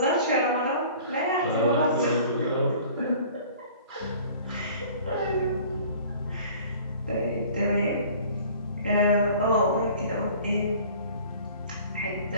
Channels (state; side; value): inverted; both; correlation -0.48